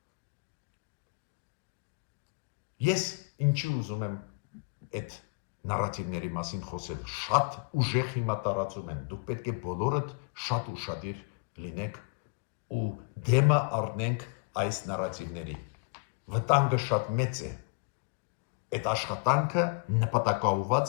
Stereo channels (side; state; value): right; quieter; 29.3 dB